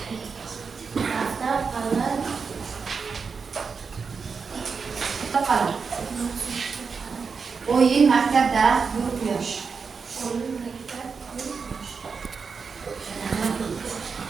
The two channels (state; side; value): quieter; left; 5.4 dB